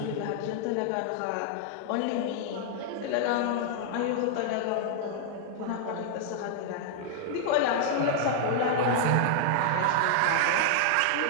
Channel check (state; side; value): different; both; correlation -0.01